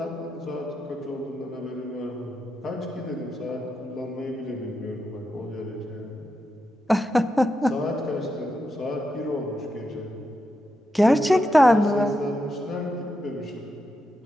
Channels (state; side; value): normal; both; correlation 0.86